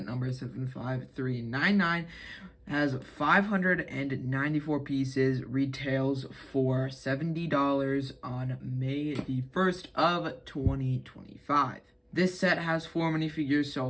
number 75399. Has 594 pieces, retails for $70 on May the 1st of 2025. This set has 4 minifigures, so I'll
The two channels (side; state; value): both; identical; correlation 1.00